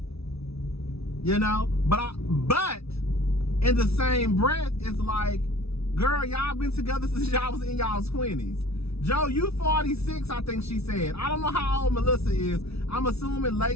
You know? But in the same breath, it's like, girl, y'all been together since y'all was in y'all's 20s. Joe, you 46, I think she said. I don't know how old Melissa is. I'm assuming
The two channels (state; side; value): late; right; 0.78 ms